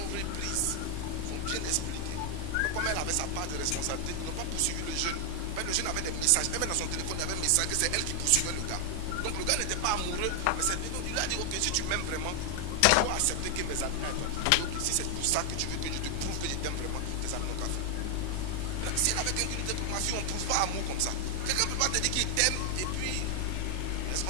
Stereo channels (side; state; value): both; different; correlation 0.00